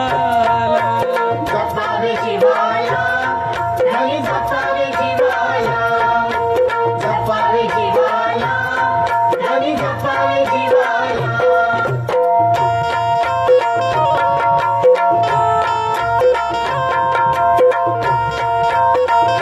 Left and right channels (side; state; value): both; identical; correlation 1.00